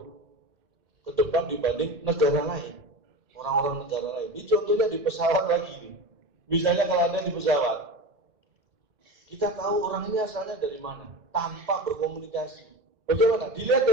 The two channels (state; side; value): late; left; 2.1 ms